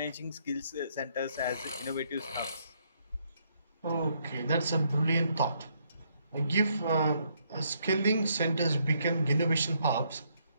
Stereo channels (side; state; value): both; inverted; correlation -0.72